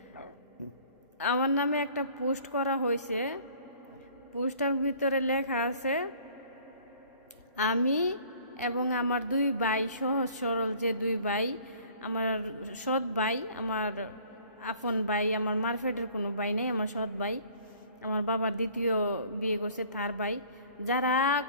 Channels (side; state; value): both; inverted; correlation -0.53